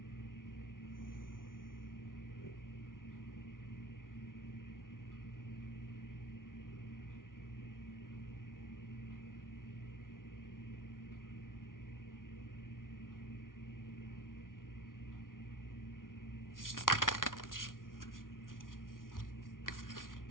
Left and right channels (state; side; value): late; right; 0.90 ms